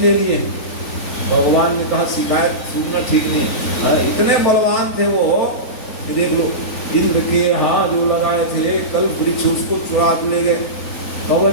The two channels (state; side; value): late; right; 3.9 ms